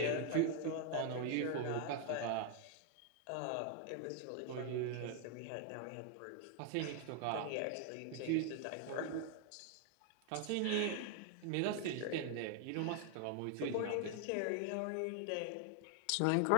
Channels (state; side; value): different; both; correlation 0.00